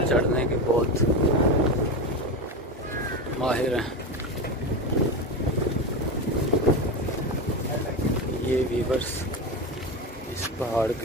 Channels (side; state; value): both; normal; correlation 0.20